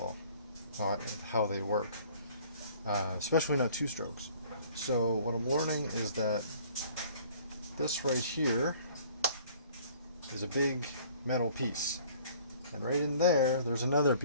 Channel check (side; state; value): both; inverted; correlation -0.53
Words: how they work, especially not two strokes. So what I'm learning is that this right here is a big metal piece, and right in there there's another